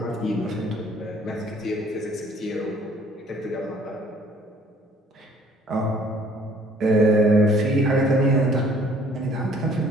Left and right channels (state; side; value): normal; both; correlation 0.58